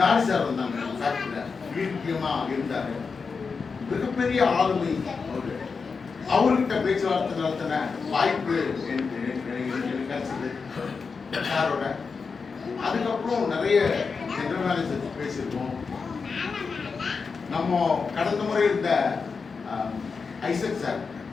சார் வந்தாங்க ஃபேக்டரியில, முக்கியமா இருந்தாரு, மிகப்பெரிய ஆளுமை அவரு. அவர்கிட்ட பேச்சுவார்த்தை நடத்தின வாய்ப்பு எனக்கு கிடைச்சது சாரோட. அதுக்கப்புறம் நிறைய ஜெனரல் மேனேஜர் பேசியிருக்கோம். நம்ம கடந்த முறை இருந்த ஐசக் சார்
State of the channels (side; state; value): right; quieter; 5.0 dB